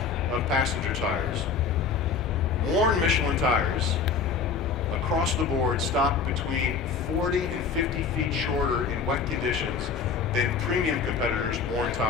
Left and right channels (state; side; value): quieter; right; 5.6 dB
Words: of passenger tires. Worn Michelin tires across the board stop between 40 and 50 feet shorter in wet conditions than premium competitors' worn